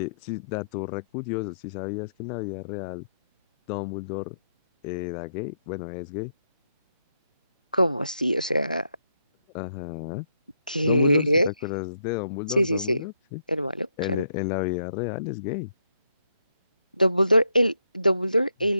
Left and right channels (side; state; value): both; inverted; correlation -0.74